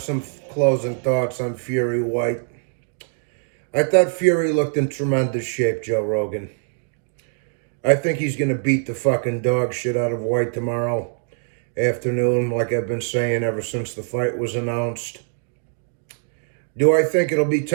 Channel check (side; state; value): left; silent; digital silence